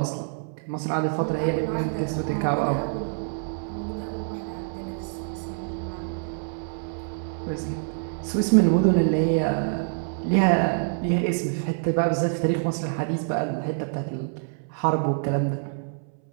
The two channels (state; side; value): silent; left; 61 dB below the other